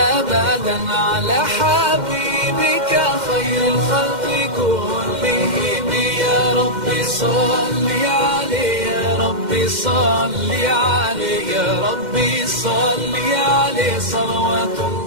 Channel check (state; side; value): late; left; 2.1 ms